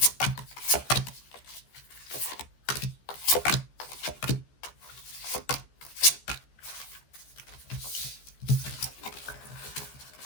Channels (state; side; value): late; right; 14 ms